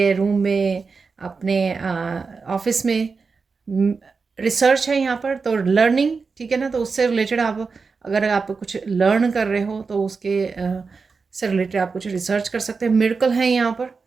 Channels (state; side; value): quieter; left; 4.7 dB